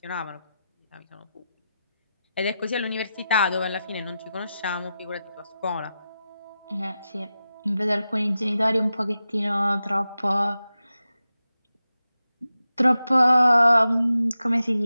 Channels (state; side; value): inverted; both; correlation -0.91